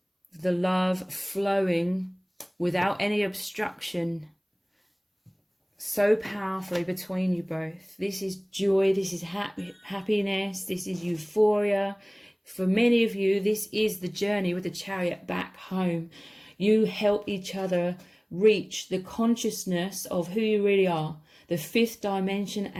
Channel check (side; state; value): both; identical; correlation 1.00